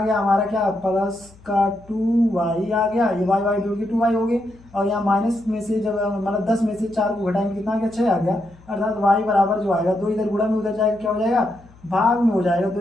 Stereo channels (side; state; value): left; noise; hum, 25 dB below the sound